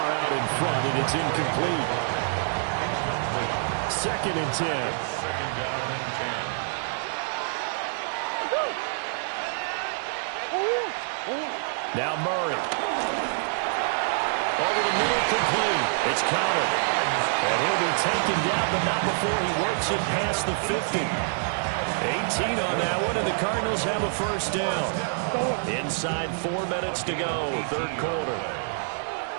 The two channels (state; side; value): silent; left; 60 dB below the other